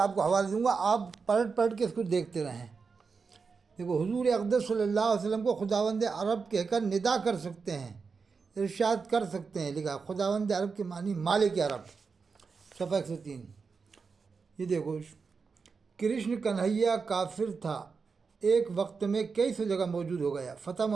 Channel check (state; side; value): quieter; left; 5.1 dB